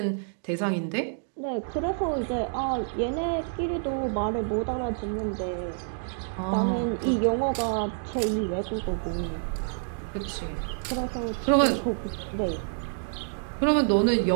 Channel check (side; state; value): left; silent; digital silence